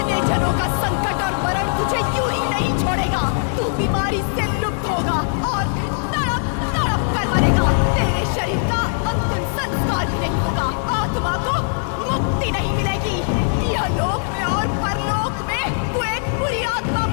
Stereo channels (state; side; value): silent; right; digital silence